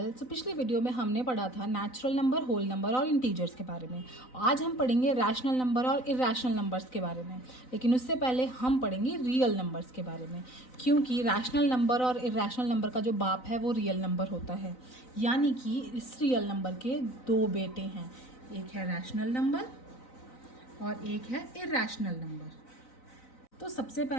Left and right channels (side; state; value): right; late; 3.9 ms